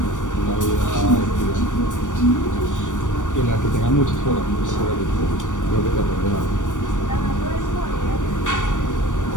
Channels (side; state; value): right; late; 0.87 ms